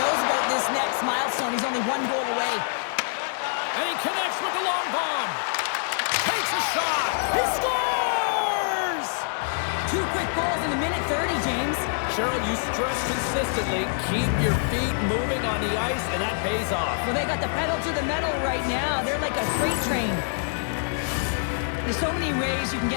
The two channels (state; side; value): silent; right; 59 dB below the other